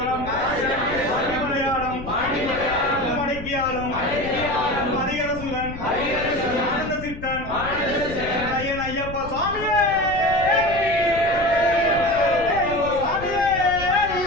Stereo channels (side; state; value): left; noise; rumble, 12 dB below the sound